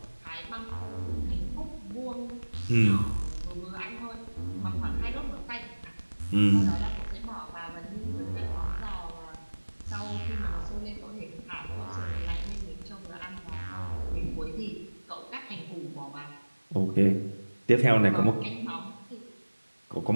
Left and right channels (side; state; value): both; inverted; correlation -1.00